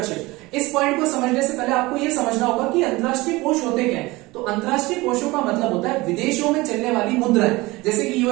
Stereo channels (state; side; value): quieter; left; 21.4 dB